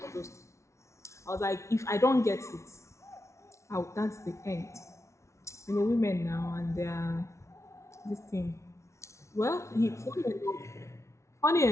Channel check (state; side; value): late; right; 0.14 ms